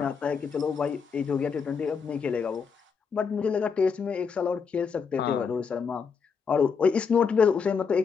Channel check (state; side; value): quieter; right; 5.9 dB